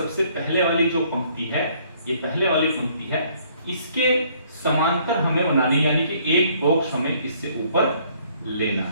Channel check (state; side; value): inverted; both; correlation -0.63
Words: पहले वाली जो पंक्ति है, ये पहले वाली पंक्ति है, इसके समांतर हमें बनानी, यानी कि एक बॉक्स हमें इससे ऊपर लेना